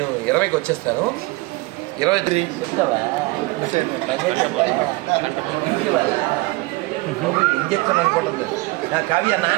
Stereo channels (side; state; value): left; quieter; 22.8 dB